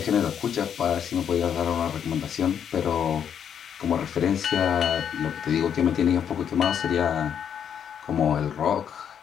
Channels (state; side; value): quieter; right; 8.4 dB